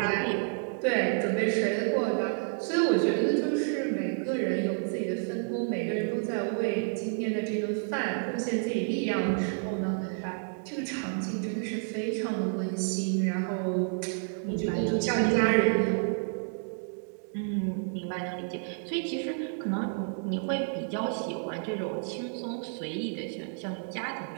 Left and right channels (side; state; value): left; silent; 58 dB below the other